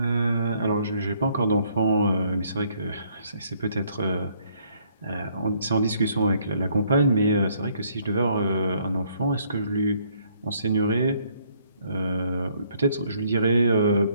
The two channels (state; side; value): inverted; both; correlation -0.66